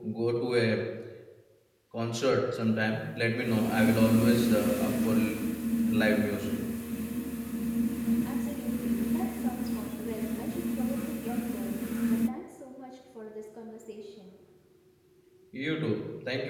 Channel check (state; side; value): identical; both; correlation 1.00